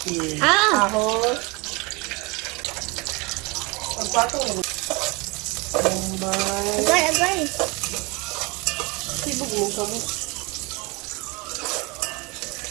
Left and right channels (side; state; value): left; quieter; 26.8 dB